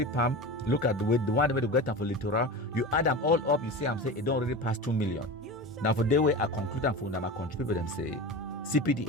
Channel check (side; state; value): both; normal; correlation 0.28